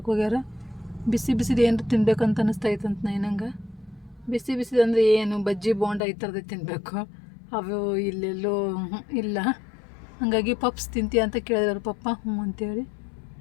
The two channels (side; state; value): right; drops out; at 6.0 s